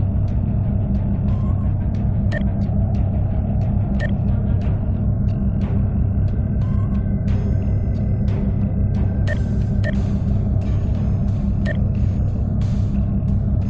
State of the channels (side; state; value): both; identical; correlation 1.00